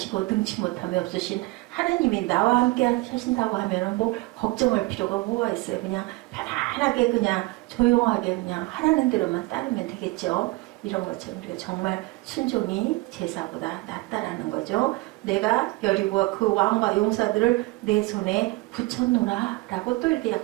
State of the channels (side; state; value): left; quieter; 22.3 dB